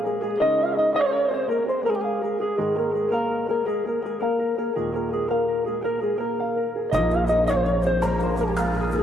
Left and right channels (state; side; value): normal; both; correlation 0.77